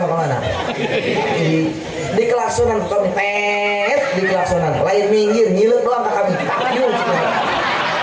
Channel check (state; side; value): identical; both; correlation 1.00